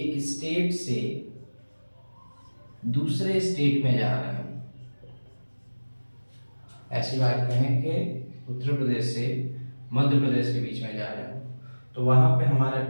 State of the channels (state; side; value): inverted; both; correlation -1.00